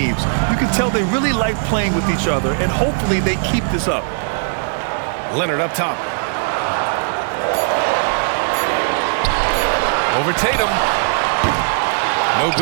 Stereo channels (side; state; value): left; silent; digital silence